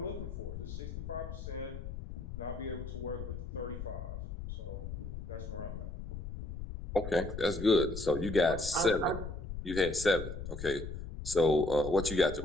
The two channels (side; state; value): left; noise; rumble, 7 dB below the sound